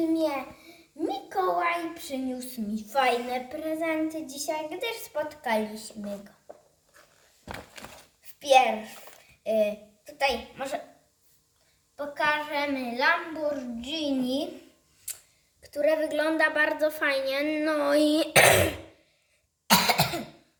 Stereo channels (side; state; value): both; identical; correlation 1.00